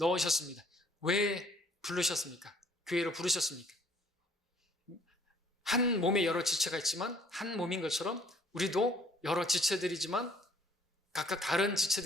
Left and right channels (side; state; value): both; normal; correlation 0.59